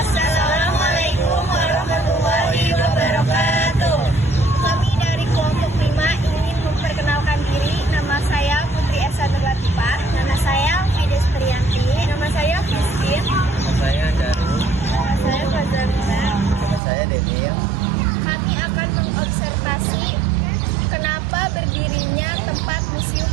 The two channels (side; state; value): left; drops out; at 16.8 s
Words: warahmatullahi wabarakatuh. Kami dari kelompok 5 ingin memperkenalkan diri. Nama saya Putri Esa Latifah. Nama saya Fides Trianti. Nama saya Christine. Nama saya Daru. Nama saya Fazalina. Nama saya Denil. Kami akan mengobservasi kenapa berdirinya tempat Museum